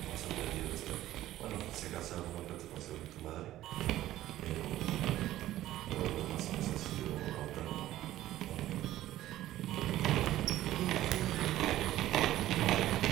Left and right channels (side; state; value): left; quieter; 14.3 dB